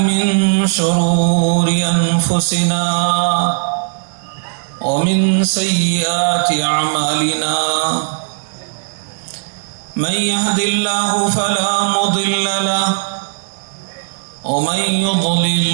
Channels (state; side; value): silent; left; digital silence